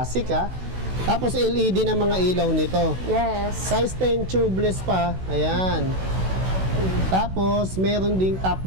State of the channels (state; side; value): late; left; 16 ms